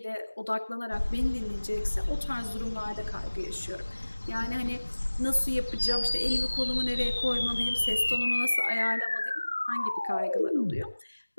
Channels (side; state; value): both; inverted; correlation -1.00